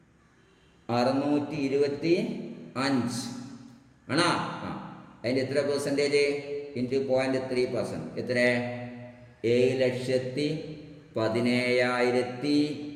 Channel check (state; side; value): identical; both; correlation 1.00